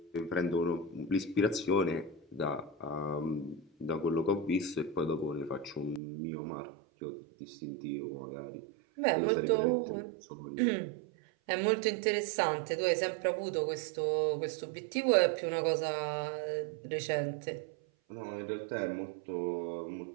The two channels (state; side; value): drops out; left; at 6.0 s